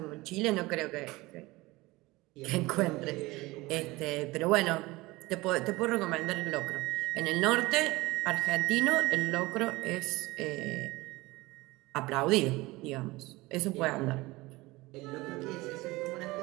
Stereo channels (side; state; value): left; quieter; 20.9 dB